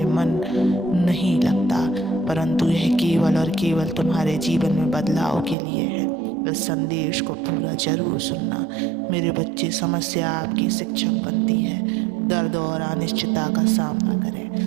मन नहीं लगता, परंतु यह केवल और केवल तुम्हारे जीवन में बदलाव के लिए है। इस संदेश को पूरा जरूर सुनना। मेरे बच्चे, समस्या आपकी शिक्षक बनती है। दर्द और अनिश्चितता का सामना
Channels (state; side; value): drops out; left; at 5.6 s